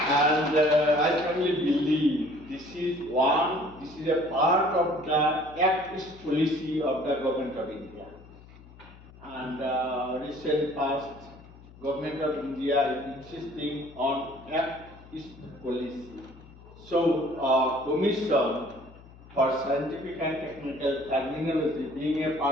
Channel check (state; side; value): noise; left; hum, 21 dB below the sound